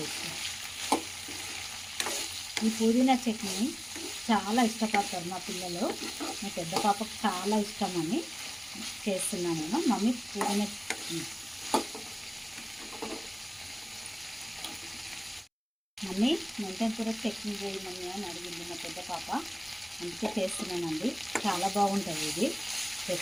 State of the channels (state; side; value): identical; both; correlation 1.00